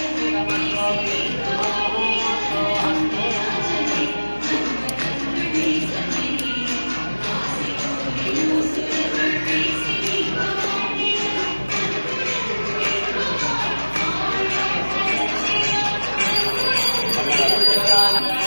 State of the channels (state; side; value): inverted; both; correlation -1.00